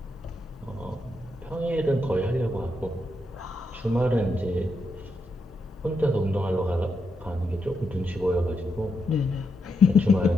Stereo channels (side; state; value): both; normal; correlation 0.82